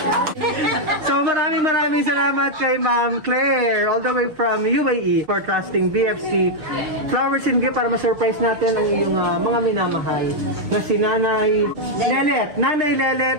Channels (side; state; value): left; late; 6.6 ms